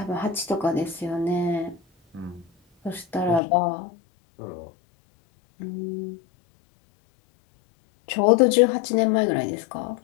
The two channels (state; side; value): drops out; right; at 3.4 s